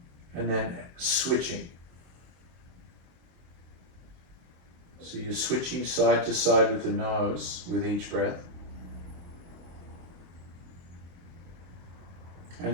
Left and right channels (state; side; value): late; left; 23 ms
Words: and then switching. So you're switching side to side with the nose with each breath.